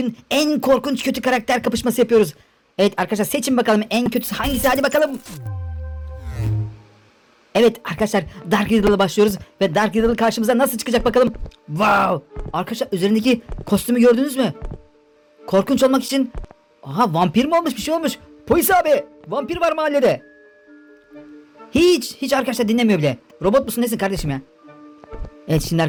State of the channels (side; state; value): both; identical; correlation 1.00